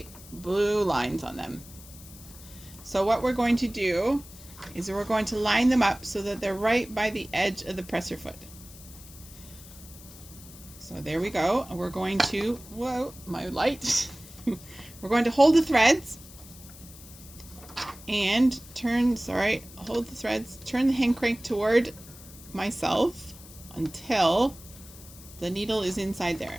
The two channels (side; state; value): left; noise; hiss, 18 dB below the sound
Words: blue lines on them. So what we're going to do is we're going to line them up so that they're right by the edge of the presser foot. So there we go. We're going to, whoa, my light. We're going to hold the threads and hold the threads, turn the hand crank toward myself until the needle is inside there.